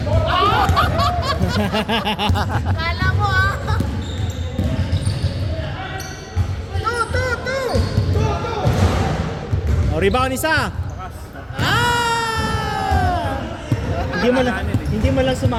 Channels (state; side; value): identical; both; correlation 1.00